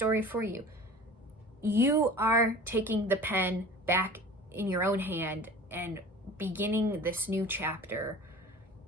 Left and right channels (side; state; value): both; normal; correlation 0.41